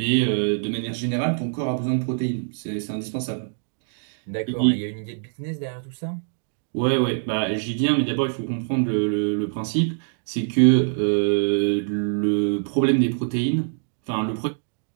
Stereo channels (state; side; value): silent; left; digital silence